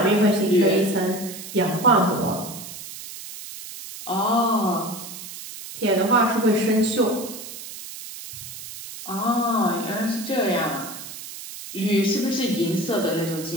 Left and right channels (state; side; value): noise; right; hiss, 12 dB below the sound